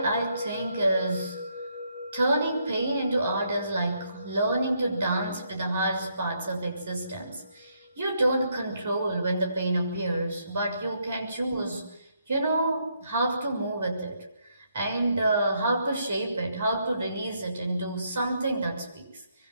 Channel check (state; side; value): inverted; both; correlation -0.75